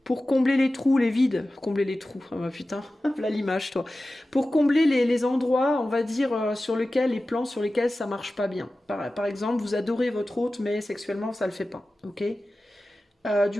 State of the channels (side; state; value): both; normal; correlation 0.95